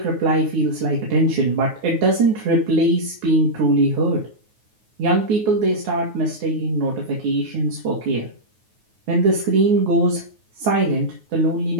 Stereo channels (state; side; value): late; left; 9.4 ms